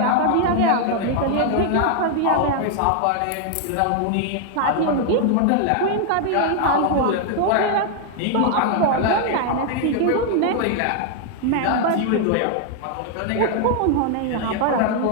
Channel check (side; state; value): both; different; correlation 0.00